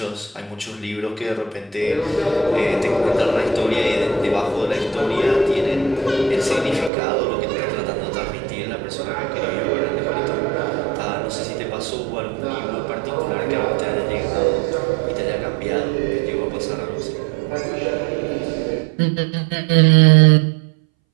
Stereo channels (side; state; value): left; drops out; at 6.9 s